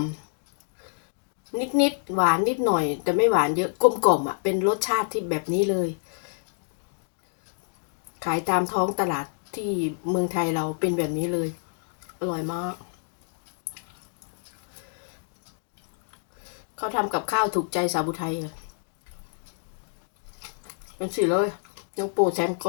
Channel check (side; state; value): right; silent; 60 dB below the other